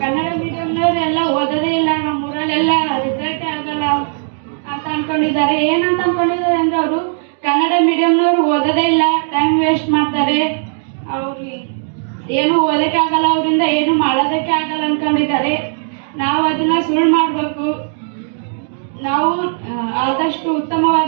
ಕನ್ನಡ ಮೀಡಿಯಂನವ್ರೆಲ್ಲ ಓದೋದೇ ಇಲ್ಲ, ನಮ್ಮ ಊರಲ್ಲೆಲ್ಲ ರಿಸಲ್ಟೇ ಆಗಲ್ಲ ಅಂತ ಅನ್ಕೊಂಡಿದ್ದಾರೆ. ಏನಂತ ಅನ್ಕೊಂಡಿದ್ದಾರೆ ಅಂದ್ರೆ ಅವರು ಕನ್ನಡ ಮೀಡಿಯಂನವ್ರು ಓದೋದೇ ಇಲ್ಲ, ಟೈಮ್ ವೇಸ್ಟ್ ಮಾಡ್ತಾರೆ, ಅವ್ರಿಗೆ ಏನು ಓದಕ್ಕೆ ಆಗಲ್ಲ, ಅವರಿಂದ ಏನು ಮಾಡೋದಕ್ಕೆ ಆಗಲ್ಲ ಅನ್ಕೊಂಡಿದ್ದಾರೆ. ನಾವು ಅದನ್ನ ಸುಳ್ಳು ಮಾಡಬೇಕು. ನಾವು ಆದಷ್ಟು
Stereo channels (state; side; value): silent; left; digital silence